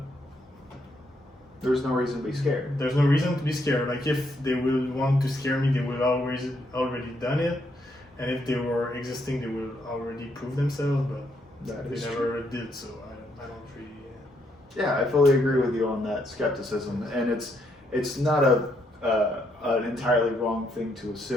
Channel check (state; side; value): normal; both; correlation 0.75